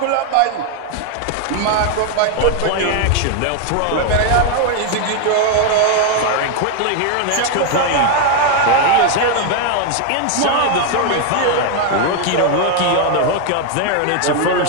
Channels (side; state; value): both; different; correlation 0.01